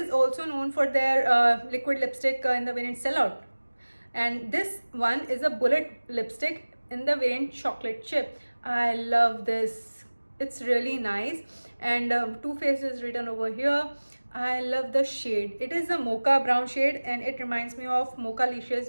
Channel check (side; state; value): both; inverted; correlation -1.00